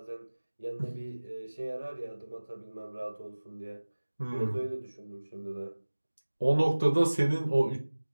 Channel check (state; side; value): inverted; both; correlation -1.00